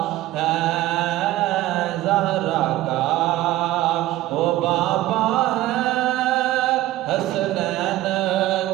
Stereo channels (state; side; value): quieter; left; 15.6 dB